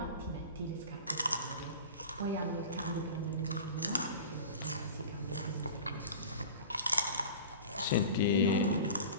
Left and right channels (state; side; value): inverted; both; correlation -0.36